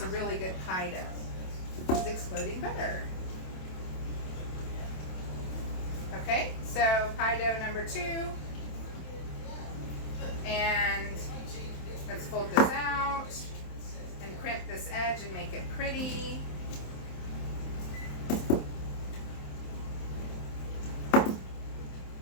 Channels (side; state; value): right; late; 27 ms